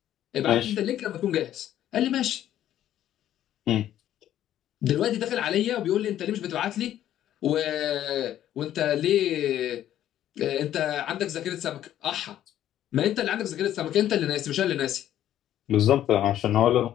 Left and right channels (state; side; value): quieter; right; 11.9 dB